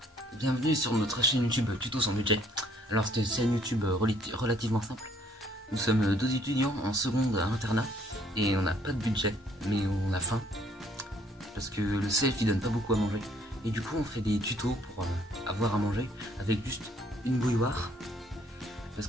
bienvenue sur notre chaîne YouTube Tuto sans budget. Alors c'est une chaîne YouTube relativement simple. Nous sommes 12 étudiants en seconde à internat et on n'a pas de budget, mais on a faim parce que le CF il donne pas beaucoup à manger. Et du coup on fait des tutos pour avoir à manger avec juste une bouilloire parce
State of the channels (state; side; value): normal; both; correlation 0.63